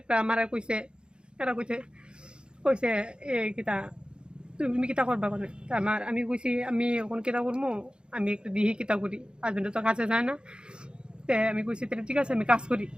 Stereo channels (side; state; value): left; late; 0.052 ms